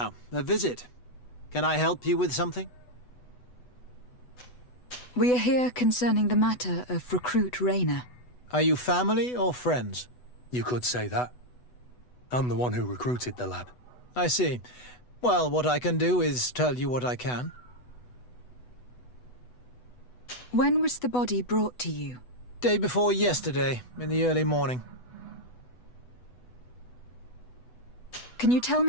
a visit. Can I help you with something? We are here concerning the matter of Recruit Rayner. Are you family or friends? You could say that. I'm the one who recruited the lad. I see. Well, what I can do is tell you what I can. When was the body brought to you? Day before yesterday, in the early morning. Can you tell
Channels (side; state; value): right; late; 8.1 ms